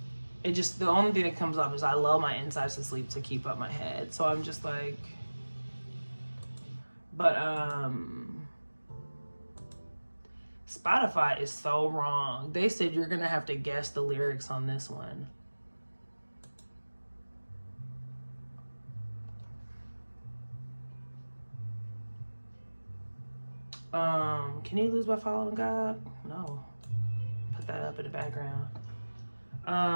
it just, the only thing that comes up is I lull my insides to sleep to keep up my head. So I'm just like, but Spotify is so wrong. They said you're gonna have to guess the lyrics on this one. Can you lose by following God? No. Put that up in the background.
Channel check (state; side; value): inverted; both; correlation -1.00